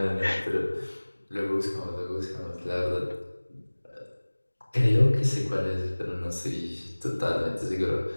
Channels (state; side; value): inverted; both; correlation -1.00